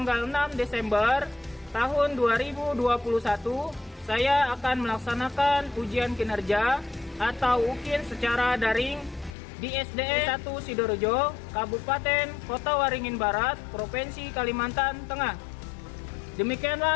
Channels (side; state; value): right; drops out; at 9.3 s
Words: 6 Desember tahun 2021, saya akan melaksanakan ujian kinerja atau UKIN secara daring di SDN 1 Sidoarjo, Kabupaten Kota Waringin Barat, Provinsi Kalimantan Tengah.